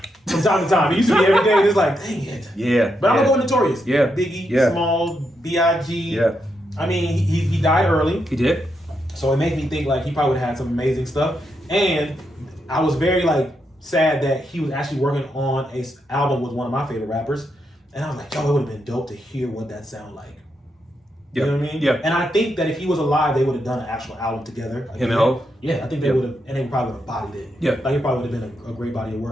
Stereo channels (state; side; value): normal; both; correlation 0.82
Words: From time to time. It used to be every day, and it's like, dang it. Yeah. But I'm gonna go with Notorious. Yeah. Biggie, Yeah. Small, B.I.G. Yeah. I mean, he died early. He did. So it made me think like he probably would have had some amazing stuff. And I was very like sad that he was actually working on a album with one of my favorite rappers. And I was like, yo, it would have been dope to hear what that sound like. You know what I mean? Yeah. And I think that if he was alive, they would have done an actual album together. Like, Him and Ho? Yeah, I think they would have, and they probably would have bodied it. Yeah. Like it probably would have been a great body of